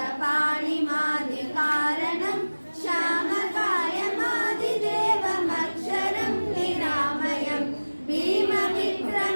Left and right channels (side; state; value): both; inverted; correlation -1.00